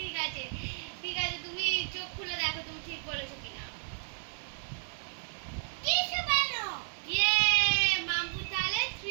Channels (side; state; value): left; silent; digital silence